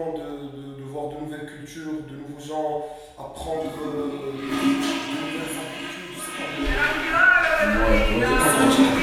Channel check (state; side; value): identical; both; correlation 1.00